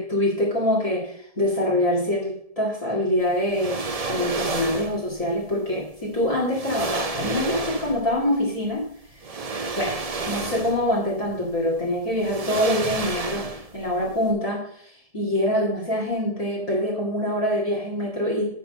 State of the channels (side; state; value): left; late; 1.7 ms